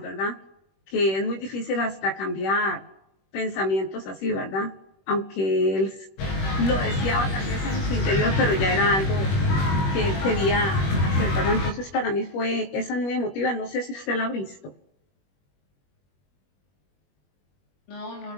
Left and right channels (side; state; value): right; late; 21 ms